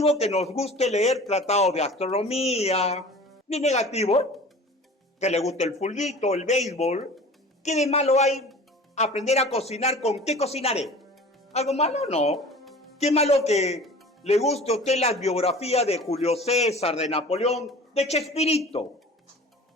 que nos guste leer tratados de astronomía, ni negativo que le guste el fulbito, el béisbol. ¿Qué de malo hay aprender a cocinar? ¿Con qué cocinaré? ¿Algo malo? No. ¿Qué malo que le guste a usted las biografías de Julio César, de Napoleón, de Chespirito?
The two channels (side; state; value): both; normal; correlation 0.41